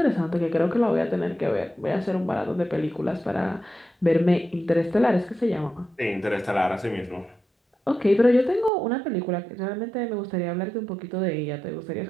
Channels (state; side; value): drops out; left; at 8.7 s